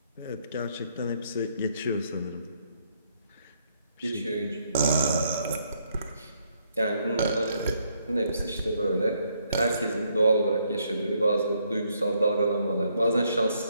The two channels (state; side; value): inverted; both; correlation -0.72